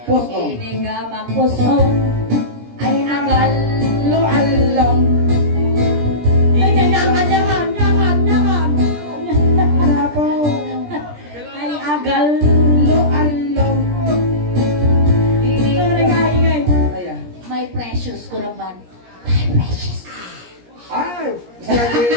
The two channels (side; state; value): left; late; 17 ms